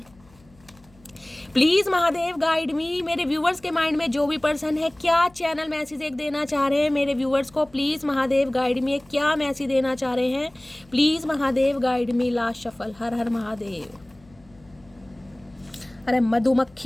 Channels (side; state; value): left; noise; hum, 29 dB below the sound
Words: प्लीज़ महादेव गाइड मी। मेरे व्यूवर्स के माइंड में जो भी पर्सन है, क्या चैनल मैसेज एक देना चाह रहे हैं मेरे व्यूवर्स को, प्लीज़ महादेव गाइड मी, क्या मैसेज देना चाह रहे हैं, please Mahadev guide me. Last shuffle, हर हर महादेव। अरे